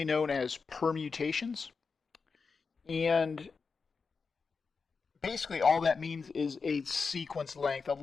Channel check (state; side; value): quieter; right; 5.0 dB